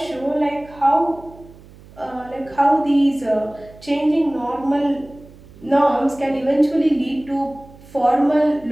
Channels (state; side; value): noise; right; hum, 22 dB below the sound